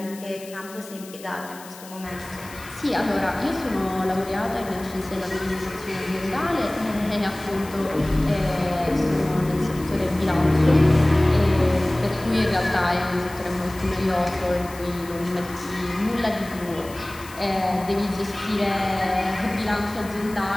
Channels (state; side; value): noise; left; hiss, 18 dB below the sound